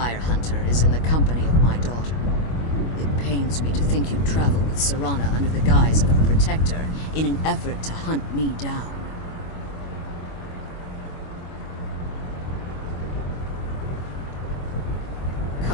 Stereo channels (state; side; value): late; right; 25 ms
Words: hunter is in the company of my daughter? It pains me to think you'd travel with Serana under the guise of her protector in an effort to hunt me down.